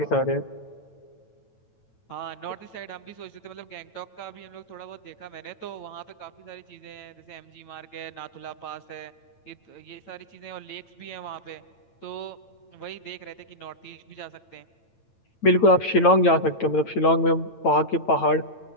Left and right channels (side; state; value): right; late; 9.0 ms